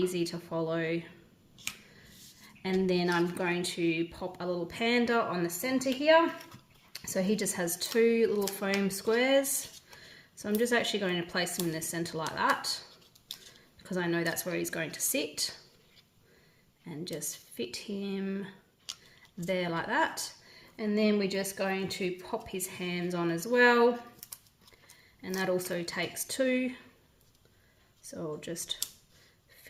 to follow. And then I'm going to pop a little panda on the center here. So he just has 2 little foam squares. So I'm just actually going to place him in the center like that, because I know that's where he's going to sit. And just fit him there like that. And then we're just going to pop his hands on as well. And that also takes 2. So I'll just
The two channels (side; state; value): both; identical; correlation 1.00